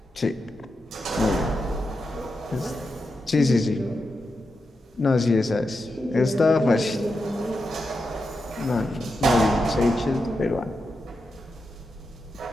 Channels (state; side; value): normal; both; correlation 0.88